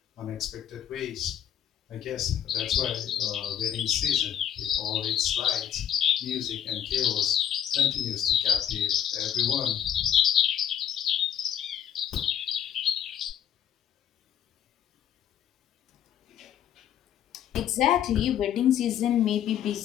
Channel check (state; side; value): quieter; right; 9.8 dB